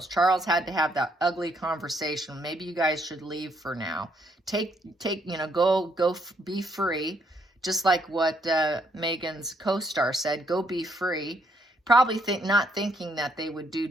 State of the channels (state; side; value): normal; both; correlation 0.72